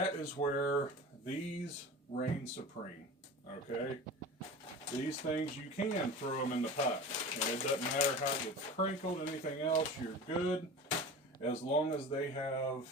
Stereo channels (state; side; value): normal; both; correlation 0.34